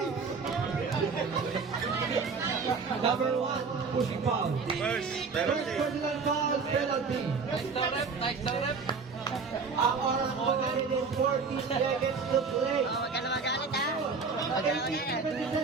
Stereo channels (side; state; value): left; quieter; 4.9 dB